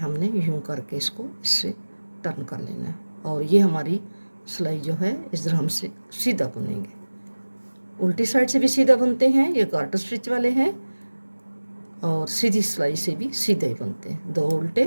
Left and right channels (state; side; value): inverted; both; correlation -1.00